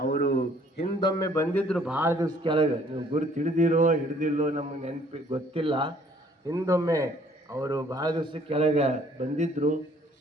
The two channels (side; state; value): both; normal; correlation 0.60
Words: ಹಿಂದೊಮ್ಮೆ ಬಂದಿದ್ರು ಭಾಳ ದಿವಸ ಕೆಳಗೆ, ನೀವು ಗುರುತು ಹಿಡ್ದಿಲ್ಲೋ ನಮಗೆ ನೆನಪಿ ಗೊತ್ತಿಲ್ಲ. ಹಿಂದೊಮ್ಮೆ ಅವರು ಭಾಳ ದಿವಸ ಕೆಳಗೆ ಬಂದಿದ್ರು.